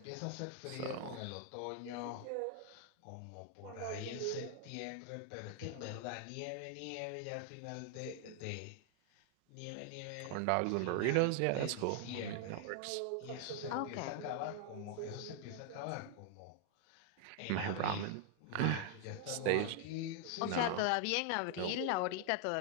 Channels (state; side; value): different; both; correlation 0.00